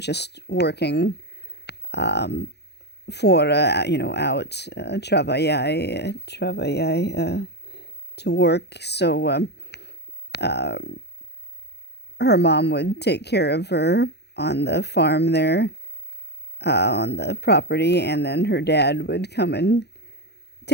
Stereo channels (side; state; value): right; late; 0.48 ms